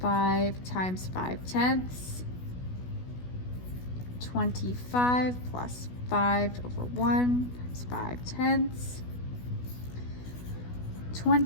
times 5/10. 25 plus 5 over 1 times 5/10.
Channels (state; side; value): late; right; 16 ms